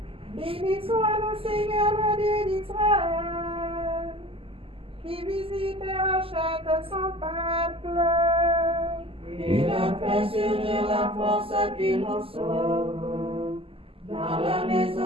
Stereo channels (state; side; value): late; left; 0.26 ms